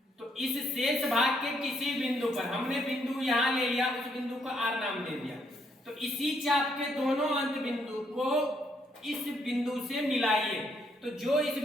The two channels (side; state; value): both; normal; correlation 0.72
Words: तो इस शेष भाग के किसी बिंदु पर, हमने बिंदु यहां ले लिया, उस बिंदु को आर नाम दे दिया। तो इसी चाप के दोनों अंत बिंदु को इस बिंदु से मिलाइए। तो जो इस